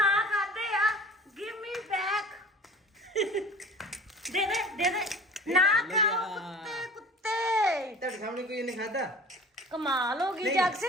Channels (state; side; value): normal; both; correlation 0.43